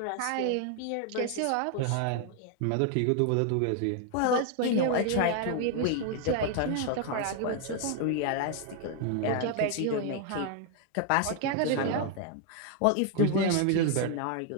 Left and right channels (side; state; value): both; different; correlation 0.00